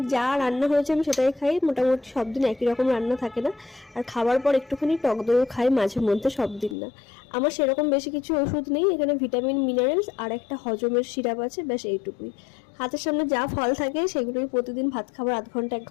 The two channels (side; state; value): right; drops out; at 6.8 s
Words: যা রান্না হয়েছে আমি সেটাই খাই, মোটামুটি সব দিন একই রকম রান্না থাকে না। আর খাবার পর একটুখানি টক দইও খাই মাঝে মধ্যে, সব দিন না। আমার সেরকম বেশি কিছু ওষুধ নেই, এখানে ভিটামিন মিনারেলস আর একটা হজমের সিরাপ আছে, ব্যাস এইটুকুই। হাতের সামনে যা ফল থাকে সেগুলোই প্রতিদিন ভাত খাবার আধ ঘন্টা 1